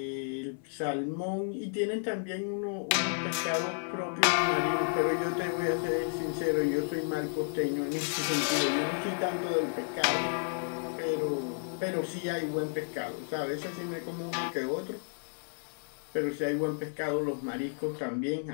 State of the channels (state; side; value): silent; right; 56 dB below the other